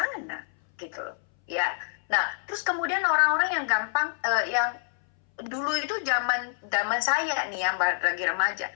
gitu loh, ya. Nah, terus kemudian orang-orang yang gampang, yang dulu itu zaman saya nih yang lagi remaja,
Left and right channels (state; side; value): silent; right; 60 dB below the other